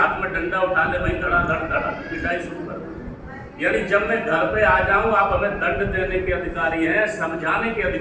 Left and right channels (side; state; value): both; identical; correlation 1.00